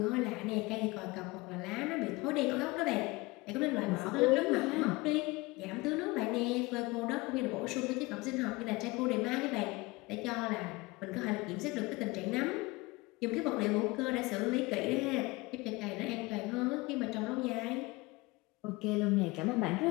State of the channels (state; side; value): quieter; right; 23.1 dB